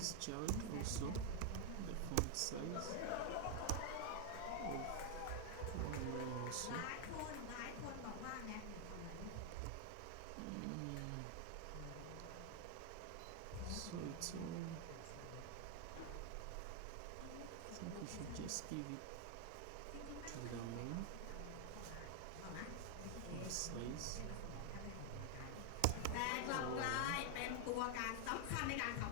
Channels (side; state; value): both; different; correlation 0.00